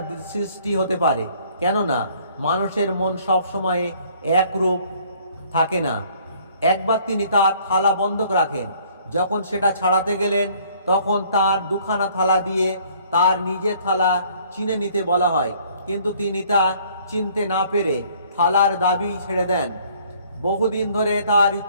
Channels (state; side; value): inverted; both; correlation -0.59